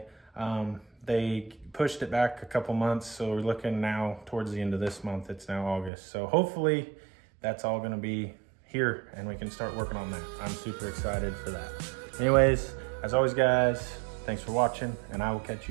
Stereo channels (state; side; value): drops out; left; at 5.9 s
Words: They pushed it back a couple months, so we're looking now towards the end of this month. It's now August. So hopefully that's all gonna be here and we can start working on that. I'm super excited for that. Anyways, as always, guys, thanks for watching, and I will catch